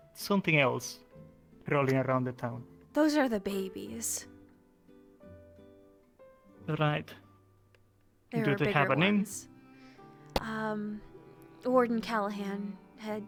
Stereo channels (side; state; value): both; identical; correlation 1.00